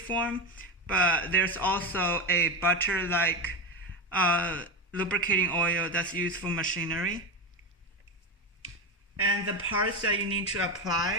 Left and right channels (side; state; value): both; normal; correlation 0.16